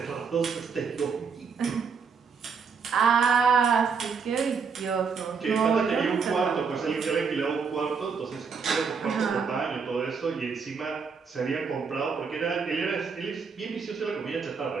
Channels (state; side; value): quieter; left; 5.7 dB